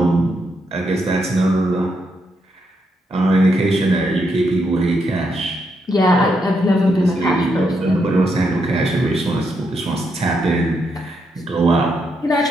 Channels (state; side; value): normal; both; correlation 0.79